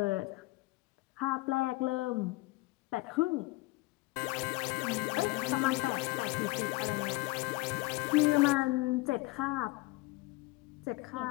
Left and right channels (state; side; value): quieter; right; 21.8 dB